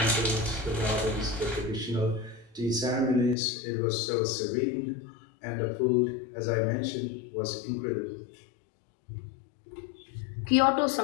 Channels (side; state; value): right; drops out; at 3.4 s